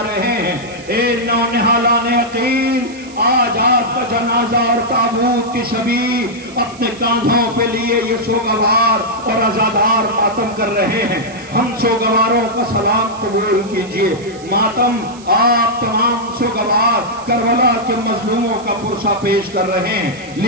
رہے ہیں، اے نونہالان عقیل آج آپ کا جنازہ اور تابوت کی شبیہ اپنے کاندھوں پہ لیے یہ سوگوار اور عزادار ماتم کر رہے ہیں، ہم سوگواروں کا سلام قبول کیجئے، ماتم آپ تمام سوگوار کربلا کے مظلوموں کا پرسہ پیش کر رہے ہیں،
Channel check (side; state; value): right; noise; hiss, 21 dB below the sound